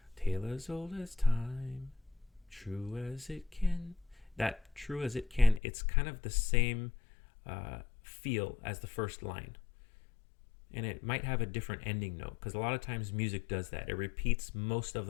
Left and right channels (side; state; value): right; drops out; at 5.6 s